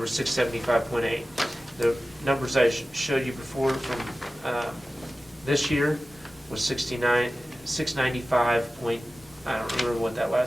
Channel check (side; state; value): both; normal; correlation 0.96